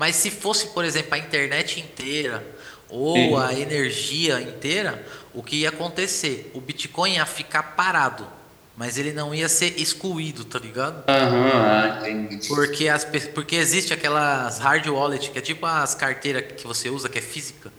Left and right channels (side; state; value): both; identical; correlation 1.00